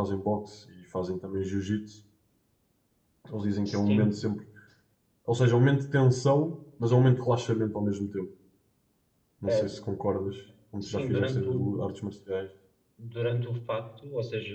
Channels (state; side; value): identical; both; correlation 1.00